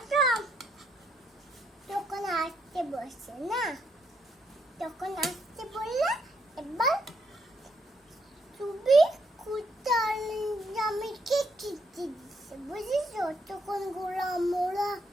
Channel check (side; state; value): both; normal; correlation 0.75